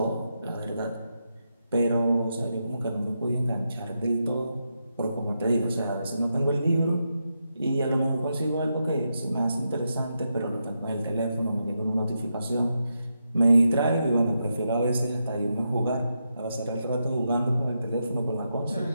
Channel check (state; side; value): inverted; both; correlation -0.85